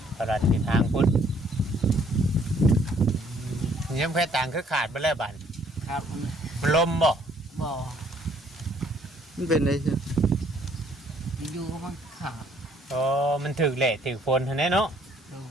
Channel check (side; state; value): both; normal; correlation 0.63